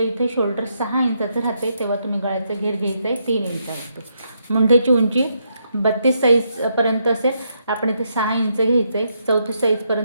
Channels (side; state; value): both; inverted; correlation -0.78